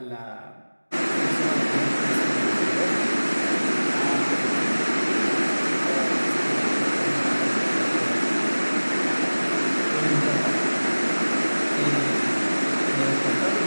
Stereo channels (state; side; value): inverted; both; correlation -1.00